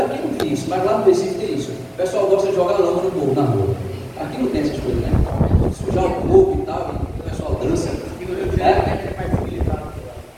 não tem isso, mas lá no Recife tem isso. O pessoal gosta de jogar lama no povo, na rua. Aqui não tem essas coisas, né? Sujar o corpo e tal, e o pessoal dança.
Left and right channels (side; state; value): both; identical; correlation 1.00